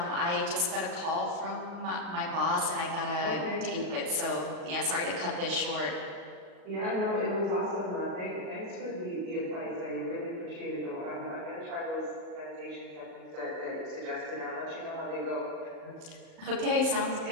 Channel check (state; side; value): late; left; 37 ms